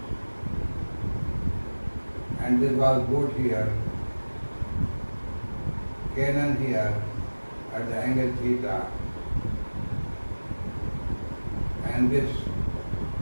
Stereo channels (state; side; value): inverted; both; correlation -1.00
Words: And this was boat here, cannon here at the angle theta. And this